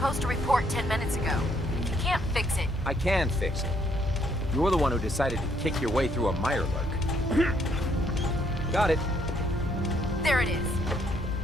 to report 10 minutes ago. You can't fix it. I can fix it. You're the one who decided to kick your way through a mirelurk. Got it. There it is.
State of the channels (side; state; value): both; normal; correlation 0.69